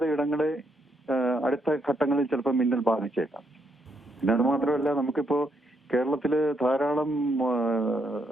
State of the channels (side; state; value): both; normal; correlation 0.76